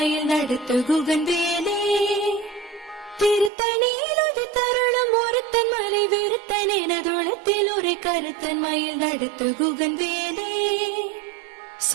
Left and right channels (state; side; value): drops out; left; at 3.5 s